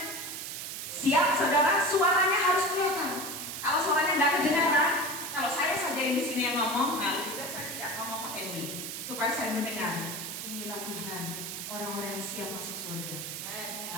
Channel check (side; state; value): right; noise; hiss, 6 dB below the sound